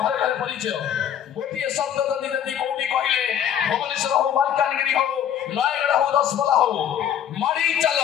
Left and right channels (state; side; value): quieter; right; 9.5 dB